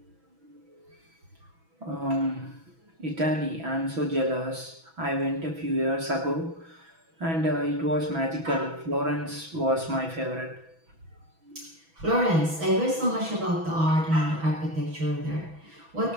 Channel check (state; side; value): late; left; 6.1 ms